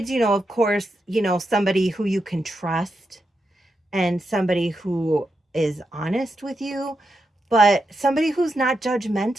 of course, somebody who you can trust and somebody who is honest with you, but somebody who's not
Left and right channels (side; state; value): both; normal; correlation 0.85